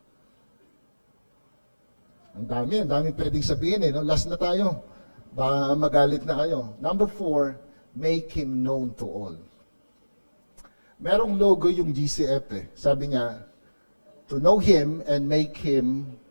Ang dami pwedeng sabihin eh. No? Last na tayo. Baka magalit na kayo. Number 4, make Him known to all. Merong logo yung GCF eh. Sabi niya, to know Him and make Him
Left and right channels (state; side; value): inverted; both; correlation -1.00